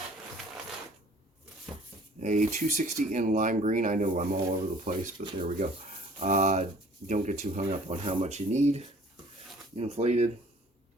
a 260 in lime green. I know I'm all over the place, but there we go. Don't get too hung up on how much you need. Inflated.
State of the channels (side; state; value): both; normal; correlation 0.52